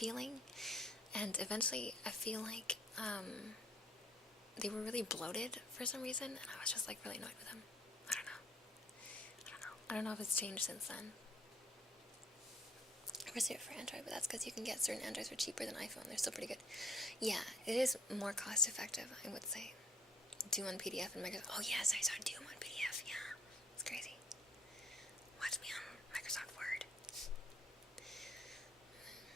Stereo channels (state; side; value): normal; both; correlation 0.60